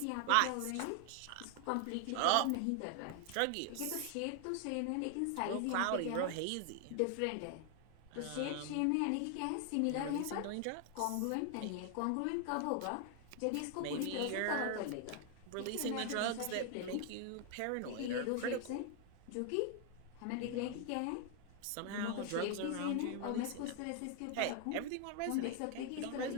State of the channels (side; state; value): both; different; correlation 0.00